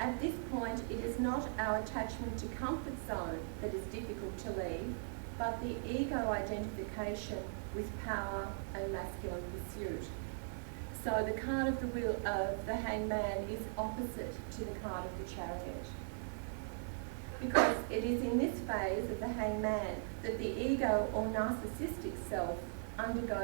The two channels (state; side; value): silent; left; digital silence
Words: this point, it is not our attachment to comfort zone that is difficult to leave, but the ego identification with power and masculine pursuit. So the card of the wheel of the Hangman is opposite to the card of the Chariot, because it is in this phase of the Hangman that the ego or narcissistic self